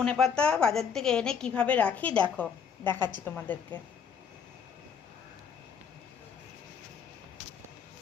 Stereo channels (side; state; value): right; quieter; 6.9 dB